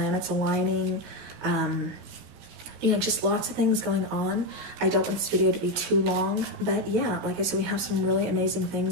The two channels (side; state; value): left; late; 16 ms